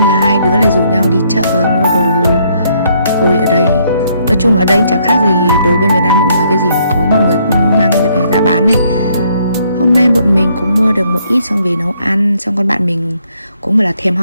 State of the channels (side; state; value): both; inverted; correlation -0.69